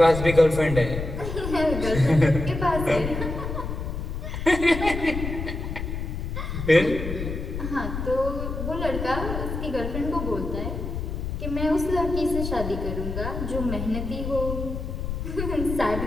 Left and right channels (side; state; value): left; noise; rumble, 5 dB below the sound